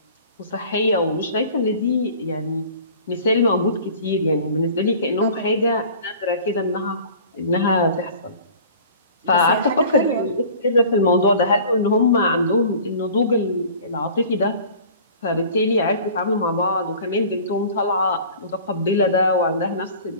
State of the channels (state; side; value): inverted; both; correlation -0.45